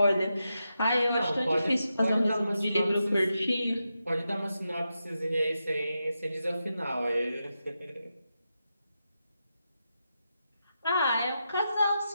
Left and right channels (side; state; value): both; inverted; correlation -0.88